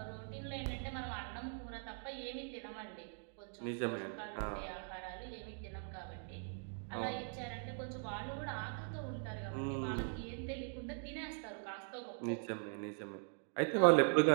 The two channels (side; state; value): left; silent; 50 dB below the other